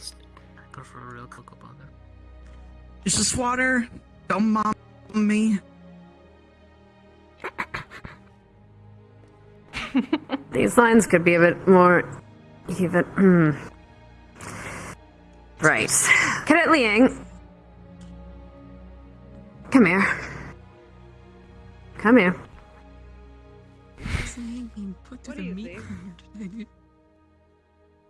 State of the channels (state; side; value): identical; both; correlation 1.00